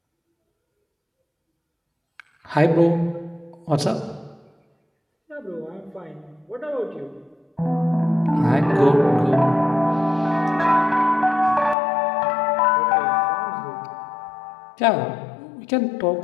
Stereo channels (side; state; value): right; drops out; at 11.8 s